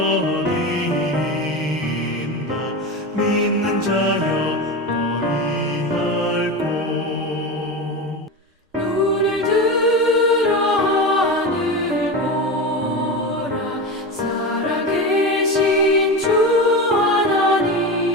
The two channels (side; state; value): both; normal; correlation 0.22